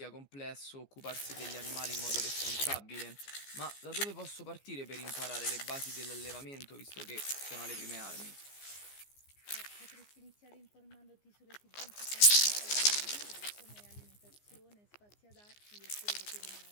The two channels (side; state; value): right; late; 15 ms